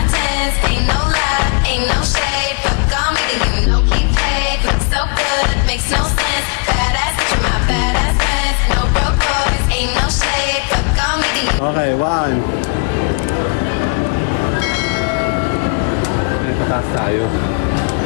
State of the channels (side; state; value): right; quieter; 37.1 dB